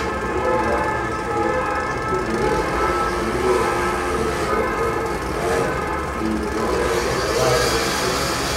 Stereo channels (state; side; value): identical; both; correlation 1.00